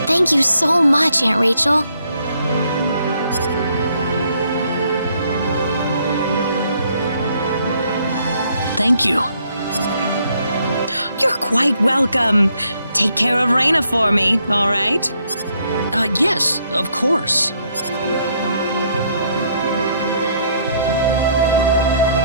Thank you so much, Aunt Rachel. Thank you. You're quite welcome. Take care of Raina for me, all right? Yes, of course.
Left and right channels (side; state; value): both; inverted; correlation -0.70